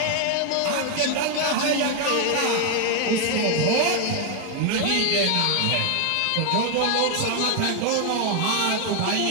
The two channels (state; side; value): different; both; correlation 0.01